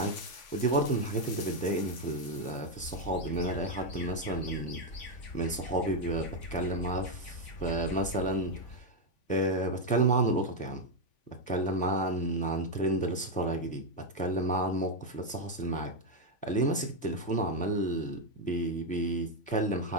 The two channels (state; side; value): late; right; 3.5 ms